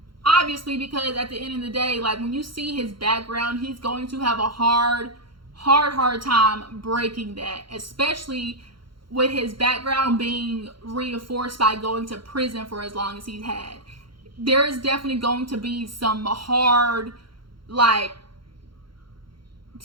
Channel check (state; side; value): late; left; 0.73 ms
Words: Obviously, because at the end of the day, like, when you see his background, he's going to have a hard time breaking that, especially with his background being reinforced by going to prison for as long as he's had. There is definitely going to be some hard,